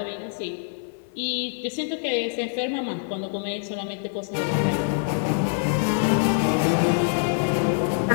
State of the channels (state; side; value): silent; right; 55 dB below the other